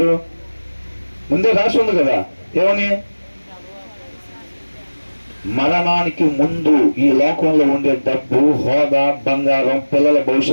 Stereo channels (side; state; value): both; inverted; correlation -1.00